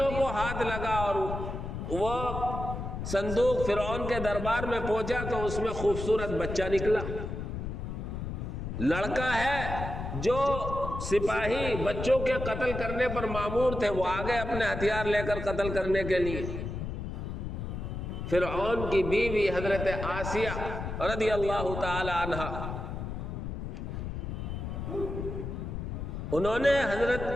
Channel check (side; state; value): left; noise; rumble, 5 dB below the sound